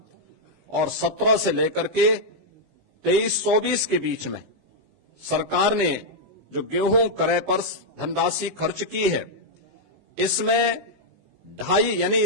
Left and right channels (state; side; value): late; left; 19 ms